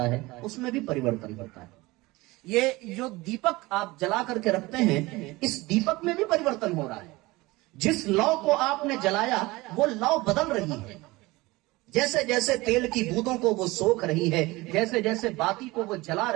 है, उसमें भी परिवर्तन होता है। ये जो दीपक आप जला करके रखते हैं, इस दीपक में भी परिवर्तन हो रहा है। जिस लौ को आपने जलाया वो लौ बदल रही है, जैसे जैसे तेल की बूंदों को वो सोख रही है, जैसे जैसे बाती को वो जला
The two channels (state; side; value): quieter; left; 21.2 dB